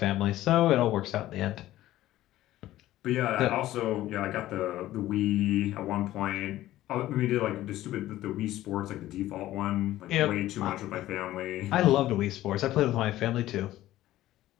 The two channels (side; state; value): right; quieter; 14.8 dB